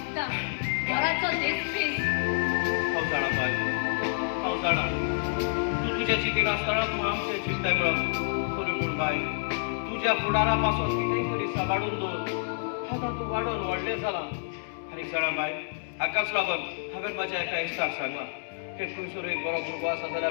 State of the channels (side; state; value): right; silent; digital silence